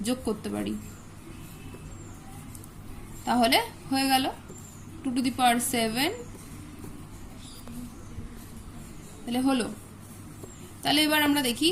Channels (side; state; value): both; identical; correlation 1.00